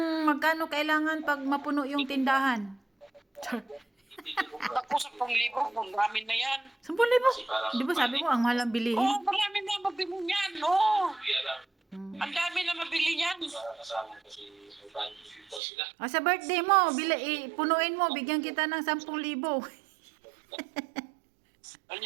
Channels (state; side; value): drops out; left; at 15.6 s